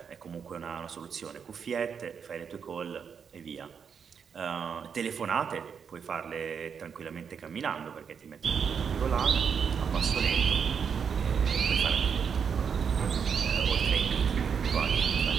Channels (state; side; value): quieter; left; 6.8 dB